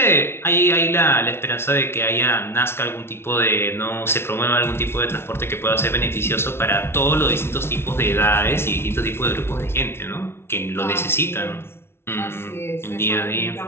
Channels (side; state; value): right; late; 0.12 ms